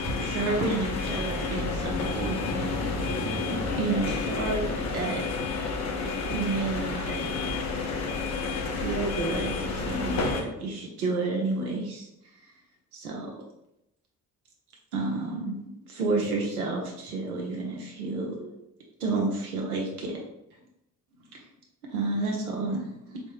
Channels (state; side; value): normal; both; correlation 0.24